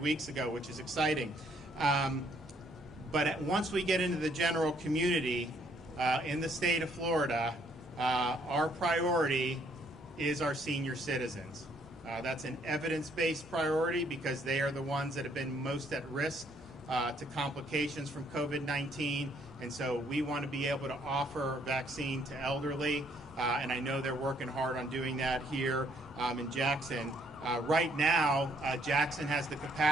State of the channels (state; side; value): normal; both; correlation 0.67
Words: ago, which is exciting. But once we get into the general community in the state of Florida, our priority is our senior citizens. That's an evidence-based priority because they are the ones that have been most at risk to complications from COVID-19, and so we want to be able to offer vaccine to elderly, and I know they're working hard on doing that here in Jackson. Right now, Jackson has the